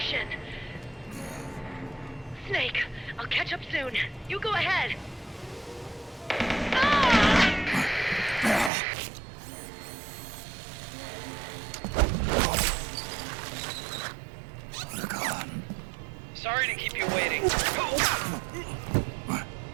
Snake, I'll catch up soon. You go ahead. Sorry to keep you waiting.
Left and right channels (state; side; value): drops out; left; at 8.7 s